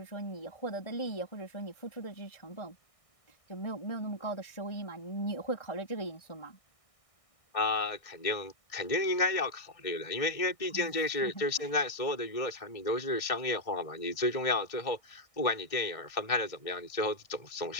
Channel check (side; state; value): right; late; 1.6 ms